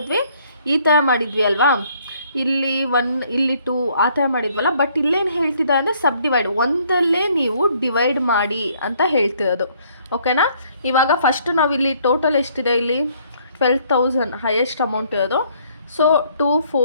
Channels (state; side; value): inverted; both; correlation -0.64